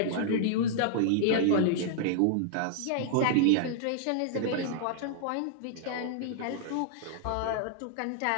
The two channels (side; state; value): both; different; correlation -0.01